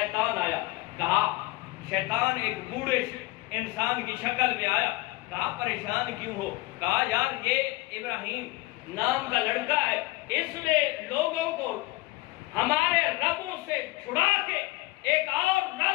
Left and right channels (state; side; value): quieter; right; 21.1 dB